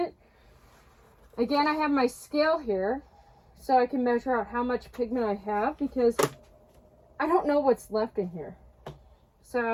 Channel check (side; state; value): both; identical; correlation 1.00